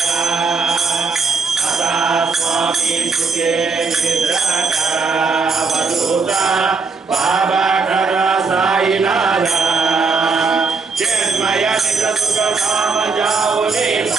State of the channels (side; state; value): left; quieter; 4.5 dB